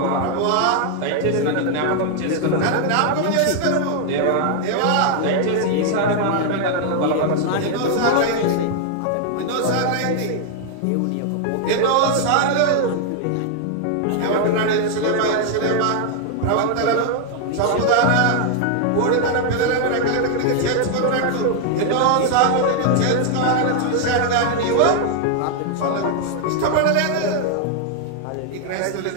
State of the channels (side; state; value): both; different; correlation 0.00